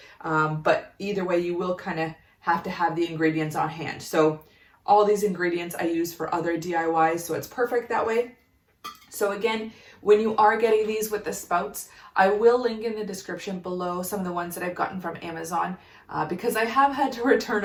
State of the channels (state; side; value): identical; both; correlation 1.00